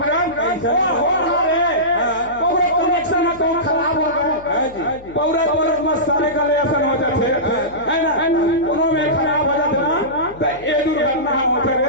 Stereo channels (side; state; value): left; noise; hum, 21 dB below the sound